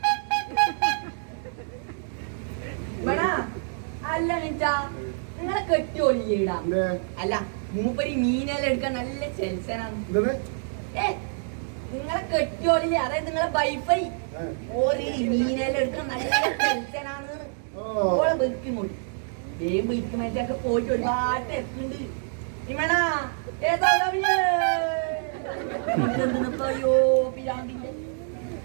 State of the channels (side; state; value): left; silent; 60 dB below the other